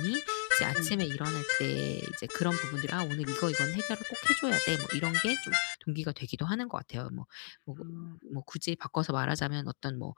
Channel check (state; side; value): silent; right; 55 dB below the other